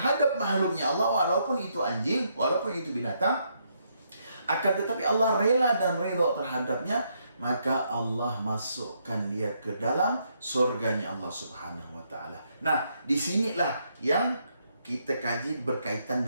makhluknya Allah, walaupun itu anjing, walaupun itu binatang. Akan tetapi Allah rela dan ridho terhadapnya, maka Allah masukkan dia ke dalam surganya Allah Subhanahu wa Ta'ala. Nah, disinilah yang kita kaji berkaitan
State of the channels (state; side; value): inverted; both; correlation -0.75